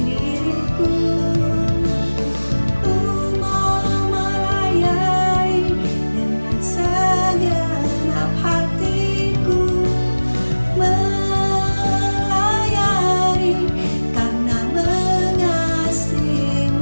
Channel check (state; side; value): inverted; both; correlation -1.00